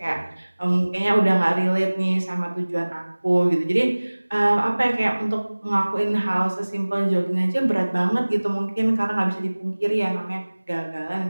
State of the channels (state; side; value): inverted; both; correlation -1.00